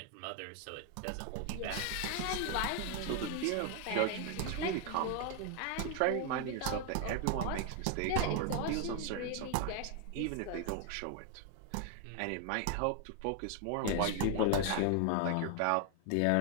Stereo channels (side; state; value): both; different; correlation 0.00